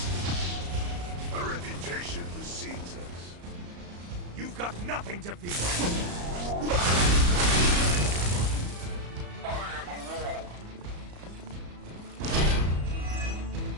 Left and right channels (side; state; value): left; late; 34 ms